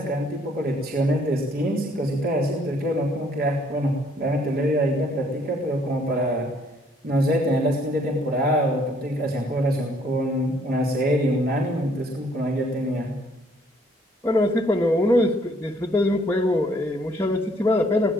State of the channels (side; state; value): both; normal; correlation 0.64